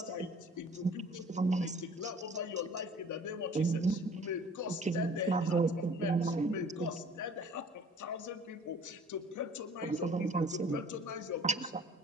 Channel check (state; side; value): normal; both; correlation 0.50